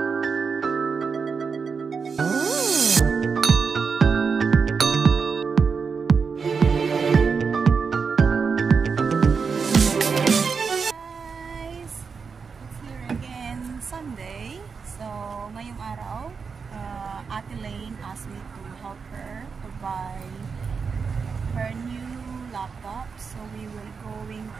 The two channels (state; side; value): quieter; left; 5.5 dB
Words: Lane asked me to help her to buy her new laptop, so we will going